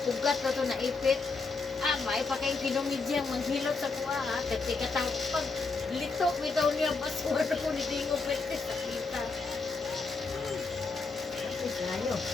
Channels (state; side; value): quieter; right; 4.1 dB